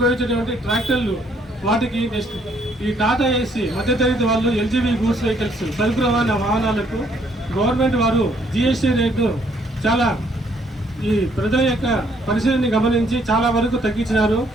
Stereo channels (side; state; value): both; normal; correlation 0.67